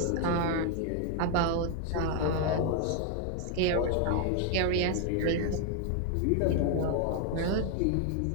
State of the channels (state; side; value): different; both; correlation 0.00